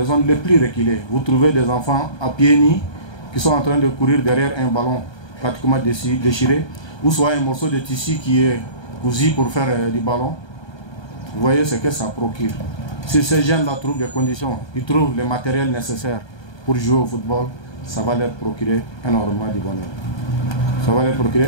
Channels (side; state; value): right; late; 1.2 ms